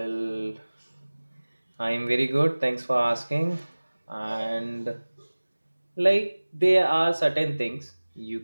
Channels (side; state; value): both; inverted; correlation -1.00